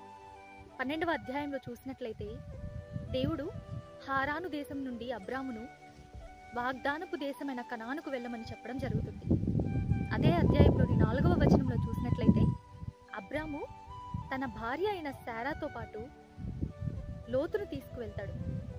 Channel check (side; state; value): both; identical; correlation 1.00